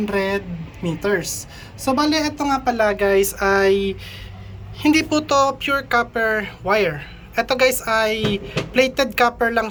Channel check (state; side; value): identical; both; correlation 1.00